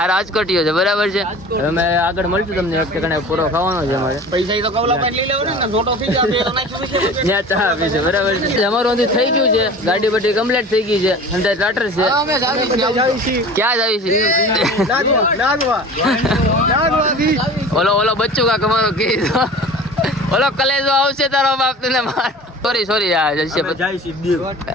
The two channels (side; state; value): both; normal; correlation 0.39